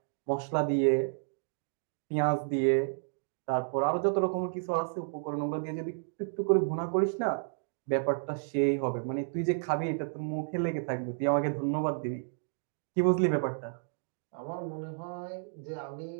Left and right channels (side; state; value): left; silent; digital silence